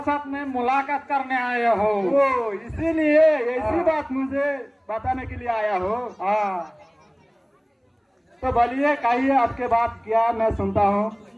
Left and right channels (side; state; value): both; identical; correlation 1.00